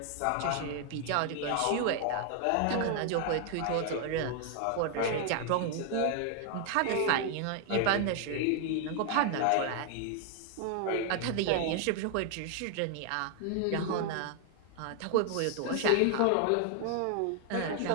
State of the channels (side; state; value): both; different; correlation 0.00